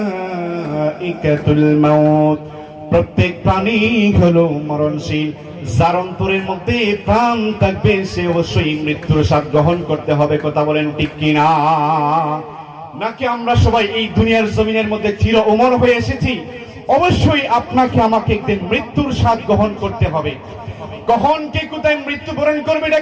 মাউত, প্রত্যেক প্রাণী হলো মরণশীল। যার অন্তরের মধ্যে প্রাণ থাকবে সে অবশ্যই মৃত্যুর স্বাদ গ্রহণ করতে হবে। কথা বলেন ঠিক কিনা? নাকি আমরা সবাই এই দুনিয়ার জমিনের মধ্যে চির অমর হয়ে এসেছি? অবশ্যই আপনাকে আমাকে একদিন মৃত্যুর স্বাদ গ্রহণ করতে হবে। কখন কে কোথায় মৃত্যুবরণ করবে এটা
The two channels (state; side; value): identical; both; correlation 1.00